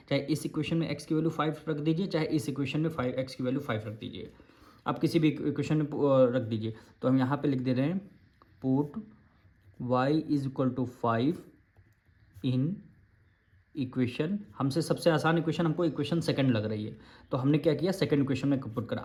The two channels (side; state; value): both; identical; correlation 1.00